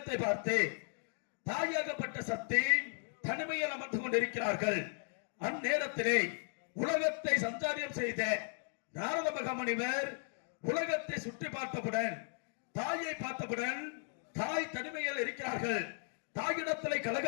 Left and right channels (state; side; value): silent; right; 54 dB below the other